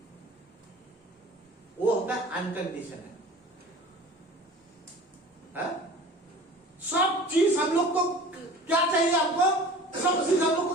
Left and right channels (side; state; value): both; normal; correlation 0.42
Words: वो होता है अनकंडीशनल। सब चीज हम लोग को क्या चाहिए, हमको सब चीज हम लोग को